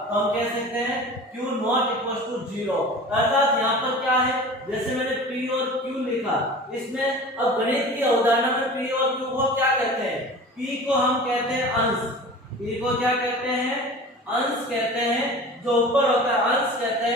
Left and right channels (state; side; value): normal; both; correlation 0.38